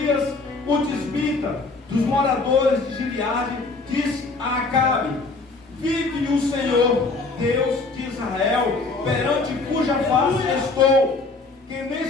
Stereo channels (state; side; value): quieter; right; 3.7 dB